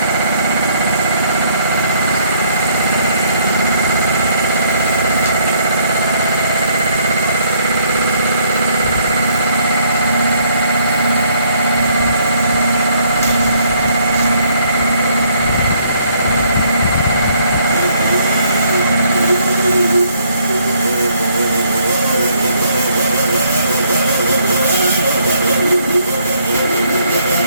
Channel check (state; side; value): inverted; both; correlation -0.67